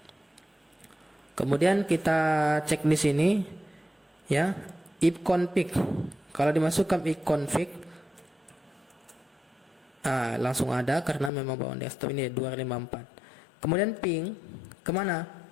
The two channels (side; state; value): right; drops out; at 11.3 s